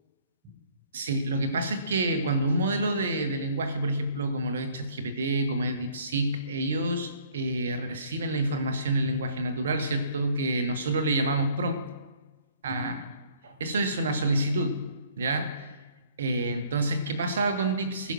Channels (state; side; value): inverted; both; correlation -0.59